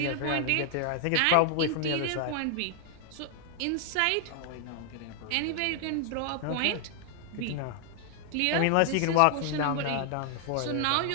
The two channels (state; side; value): different; both; correlation 0.00